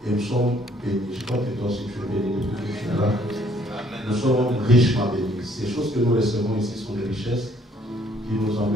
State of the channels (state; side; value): normal; both; correlation 0.62